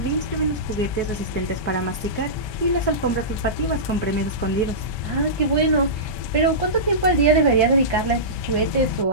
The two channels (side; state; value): right; late; 1.2 ms